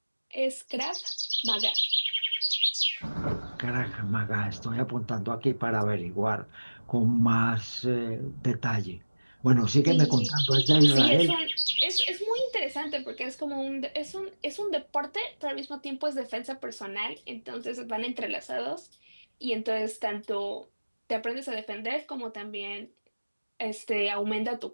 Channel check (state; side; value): inverted; both; correlation -1.00